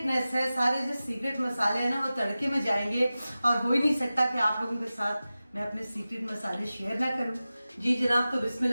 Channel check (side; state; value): both; inverted; correlation -0.95